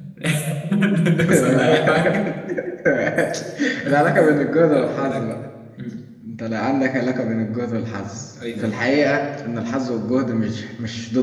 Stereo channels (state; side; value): identical; both; correlation 1.00